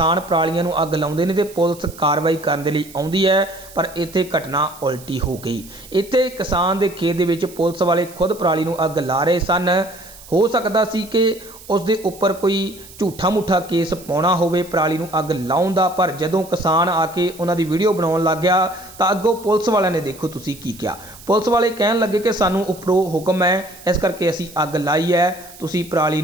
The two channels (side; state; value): right; noise; hiss, 19 dB below the sound